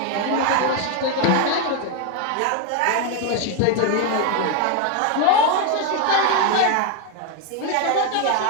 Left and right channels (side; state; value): both; different; correlation 0.01